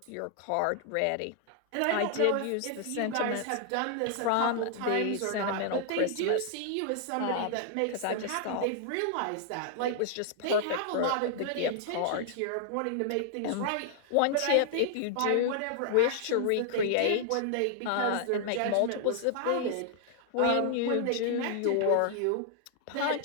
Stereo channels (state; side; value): different; both; correlation 0.00